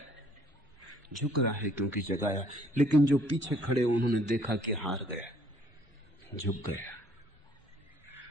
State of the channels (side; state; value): both; normal; correlation 0.61